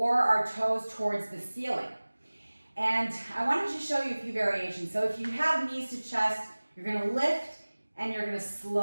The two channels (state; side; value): inverted; both; correlation -1.00